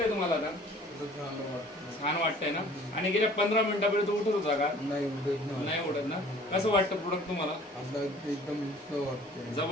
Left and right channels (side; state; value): both; normal; correlation 0.51